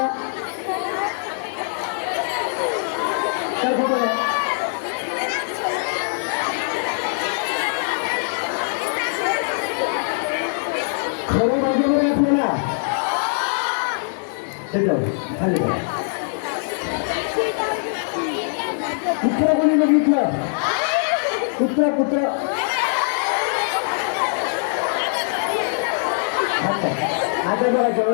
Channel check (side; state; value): right; silent; digital silence